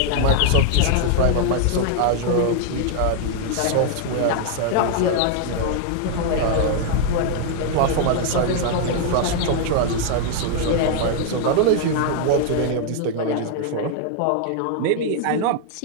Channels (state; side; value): different; both; correlation 0.00